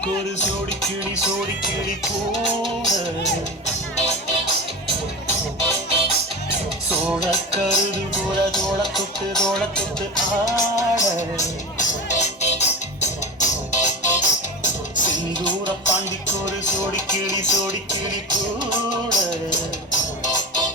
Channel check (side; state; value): both; normal; correlation 0.27